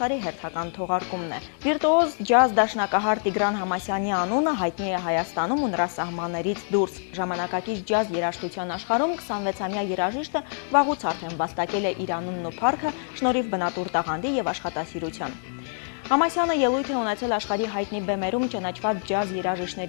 հերթական թողարկումն է։ Վիրտուոզ ջազ դաշնակահար Տիգրան Համասյանի անունը հայտնի է Հայաստանում ու նրա սահմաններից դուրս։ Ժամանակակից ջազ երաժշտության աշխարհում 26-ամյա երաժիշտը վաղուց արդեն վաստակել է իր անունն ու փառքը շնորհիվ բնատուր տաղանդի եւ աշխատասիրության։ Համասյանը ելույթ է ունեցել աշխարհի հայտնի բեմերում ճանաչված ջազ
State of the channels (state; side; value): silent; right; 61 dB below the other